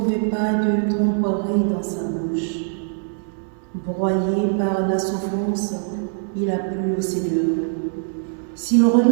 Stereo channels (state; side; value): silent; left; 63 dB below the other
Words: pas de tromperie dans sa bouche. Broyé par la souffrance, il a plu au Seigneur. S'il